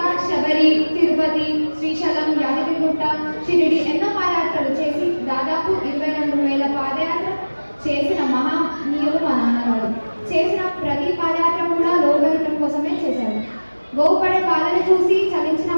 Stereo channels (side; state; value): both; inverted; correlation -1.00